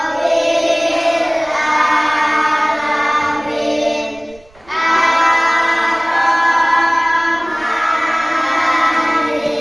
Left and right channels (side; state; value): right; noise; rumble, 27 dB below the sound